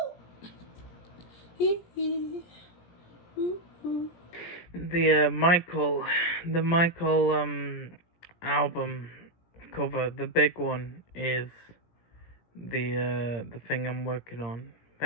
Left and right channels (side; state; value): right; late; 17 ms